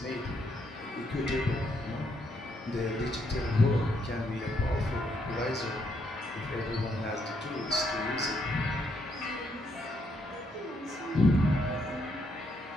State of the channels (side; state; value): both; normal; correlation 0.74